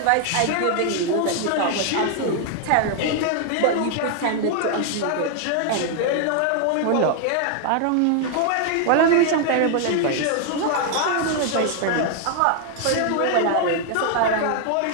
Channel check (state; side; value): different; both; correlation 0.00